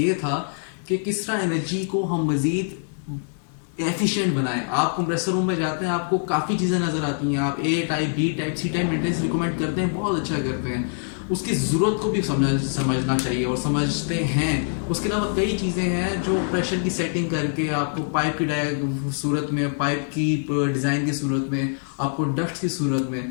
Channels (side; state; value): right; silent; digital silence